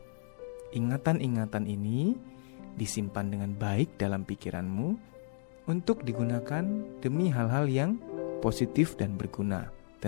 Ingatan-ingatan ini disimpan dengan baik dalam pikiranmu untuk digunakan demi hal-hal yang positif dan berguna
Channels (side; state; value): right; silent; digital silence